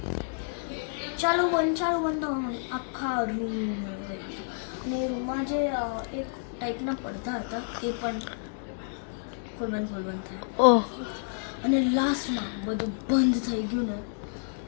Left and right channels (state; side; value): silent; right; 58 dB below the other